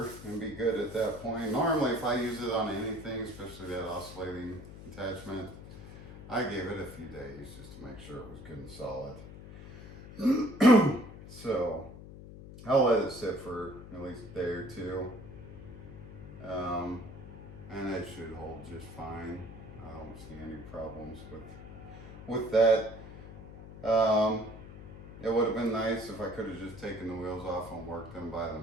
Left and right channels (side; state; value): left; noise; hum, 14 dB below the sound